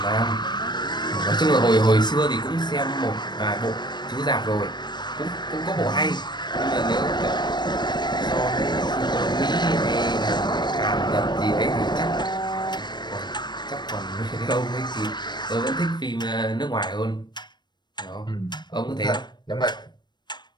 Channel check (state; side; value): late; right; 0.21 ms